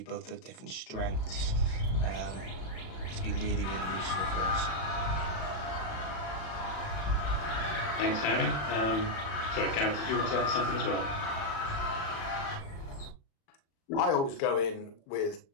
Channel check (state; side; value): late; right; 36 ms